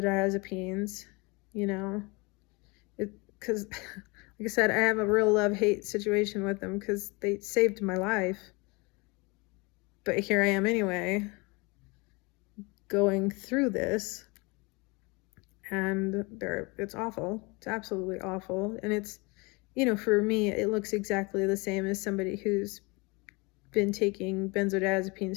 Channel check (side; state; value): right; quieter; 27.4 dB